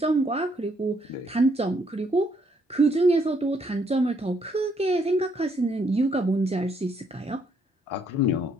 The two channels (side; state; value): both; normal; correlation 0.71